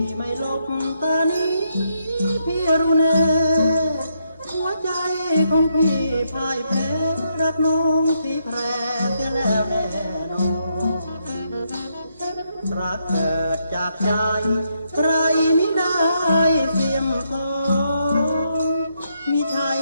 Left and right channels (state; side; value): inverted; both; correlation -0.78